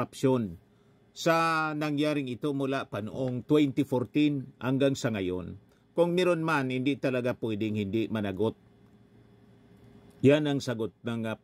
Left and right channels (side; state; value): both; identical; correlation 1.00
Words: sa nangyaring ito mula pa noong 2014 hanggang sa ngayon. Kung meron man, hindi talaga pwedeng hindi managot. Yan ang sagot ng